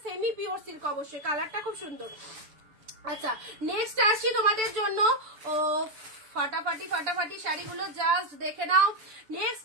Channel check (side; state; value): left; late; 6.9 ms